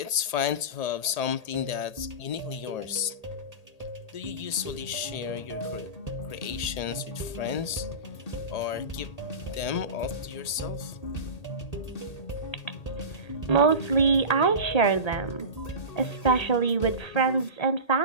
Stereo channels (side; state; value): right; late; 1.8 ms